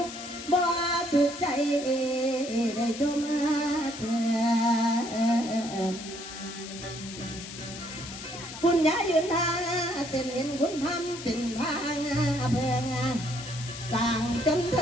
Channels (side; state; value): left; noise; hiss, 11 dB below the sound